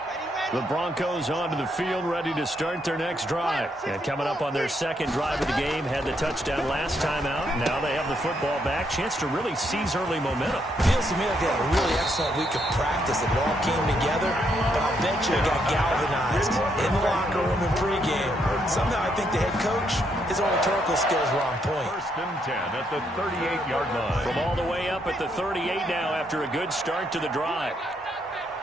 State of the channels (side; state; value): both; normal; correlation 0.76